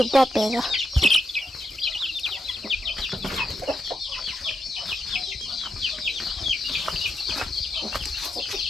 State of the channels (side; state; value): both; normal; correlation 0.83